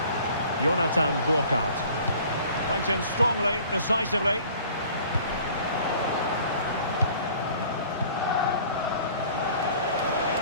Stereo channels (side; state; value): both; inverted; correlation -0.50